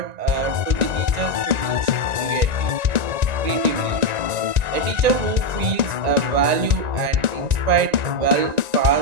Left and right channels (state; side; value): late; left; 1.9 ms